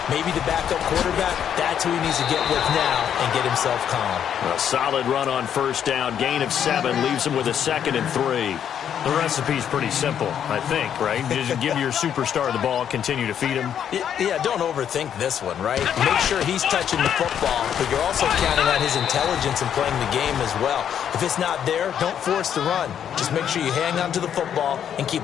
maybe the backup quarterback, that's who he needs to get with now and get himself calm. A solid run on first down. Gain of 7 leaves him with a 2nd and 3. The recipe's pretty simple, I think, right? Just give your superstar the ball, continue to feed him. Yeah, don't overthink this one, right? Make sure he's touching the football, but you're also counting on his intelligence in playing the game as well. If it's not there, don't force the run. Just make sure you hang on to the football and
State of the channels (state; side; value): quieter; right; 9.0 dB